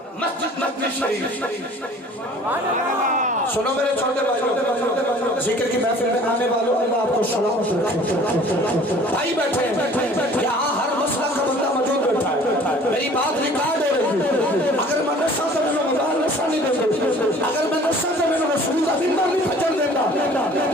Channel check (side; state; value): both; normal; correlation 0.49